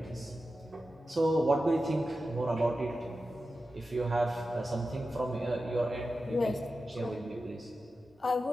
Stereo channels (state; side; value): normal; both; correlation 0.92